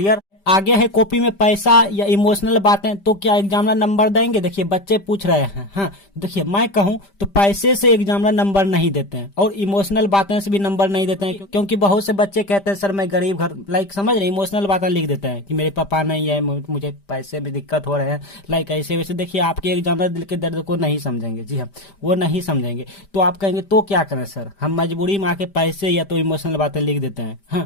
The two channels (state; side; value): late; right; 5.1 ms